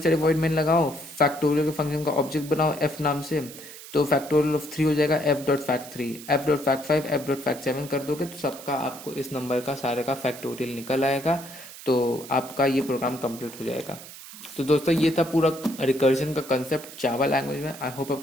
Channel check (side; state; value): right; noise; hiss, 15 dB below the sound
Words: साइड वॉइड मेन लगाओ, फैक्टोरियल के फंक्शन का ऑब्जेक्ट बनाओ f नाम से, तो फैक्टोरियल ऑफ 3 हो जाएगा f dot fact 3, f dot fact 5, f dot fact 7 कर दोगे तो सबका आपको इस नंबर का सारे का फैक्टोरियल निकल आएगा, तो आपका ये प्रोग्राम कंप्लीट हो जाएगा। तो दोस्तों ये था पूरा रिकर्जन का कंसेप्ट जावा लैंग्वेज में। आई होप